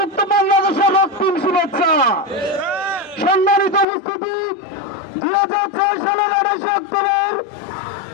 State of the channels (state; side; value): drops out; right; at 3.9 s